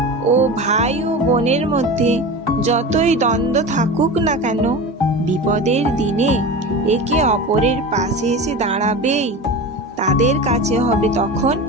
ও ভাই ও বোনের মধ্যে যতই দ্বন্দ্ব থাকুক না কেন, বিপদের দিনে একে অপরের পাশে এসে দাঁড়াবেই। তাদের কাছে হবে তখন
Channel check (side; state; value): both; normal; correlation 0.29